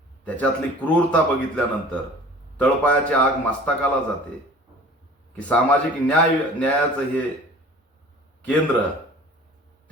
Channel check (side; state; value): both; normal; correlation 0.45